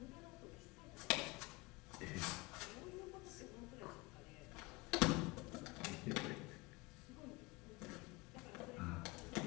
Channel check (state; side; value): quieter; right; 24.5 dB